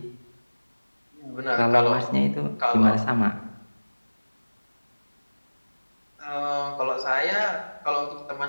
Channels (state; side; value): inverted; both; correlation -1.00